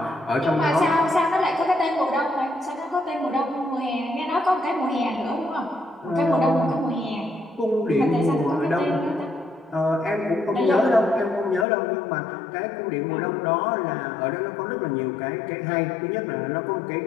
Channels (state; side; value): drops out; right; at 11.7 s